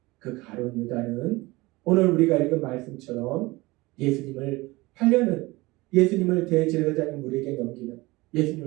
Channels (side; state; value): left; quieter; 21.5 dB